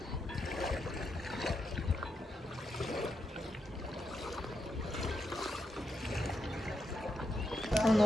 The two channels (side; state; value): both; normal; correlation 0.83